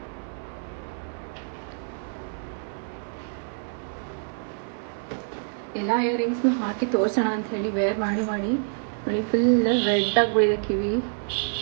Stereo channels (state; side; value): silent; left; 60 dB below the other